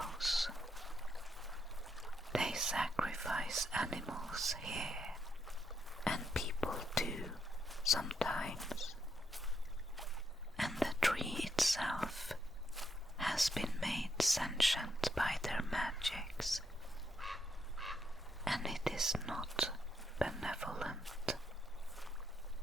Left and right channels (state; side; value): normal; both; correlation 0.77